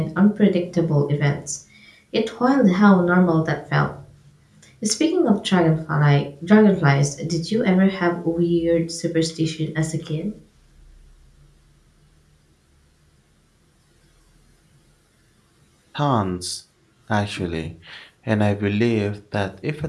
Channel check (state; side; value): identical; both; correlation 1.00